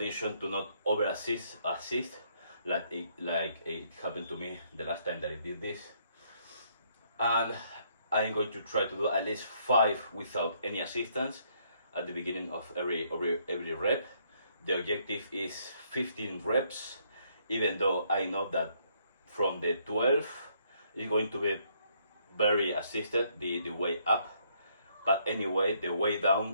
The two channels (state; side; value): inverted; both; correlation -0.69